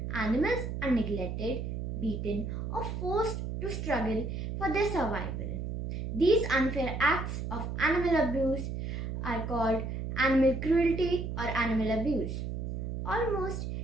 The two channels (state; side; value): noise; right; hum, 4 dB below the sound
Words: animals are neglected, beaten, or forced to struggle for their survival. These unfair acts of animal abuse are called animal cruelty or animal abuse. Almost